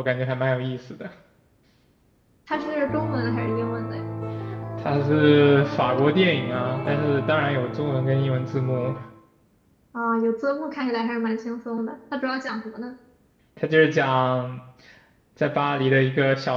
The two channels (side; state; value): both; identical; correlation 1.00